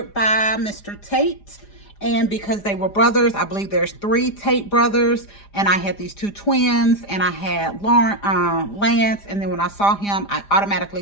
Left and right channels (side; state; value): right; late; 4.9 ms